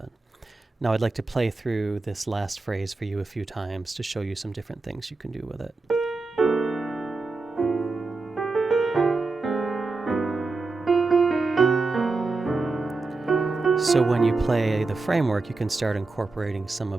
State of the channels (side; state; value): left; quieter; 3.7 dB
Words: Now I'd like to play through this last phrase for you a few times to show you some different things you can do with it. So when you play the framework, you can start incorporating some